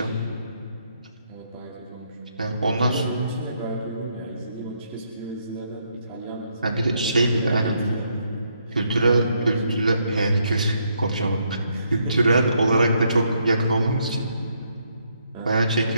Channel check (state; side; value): inverted; both; correlation -0.74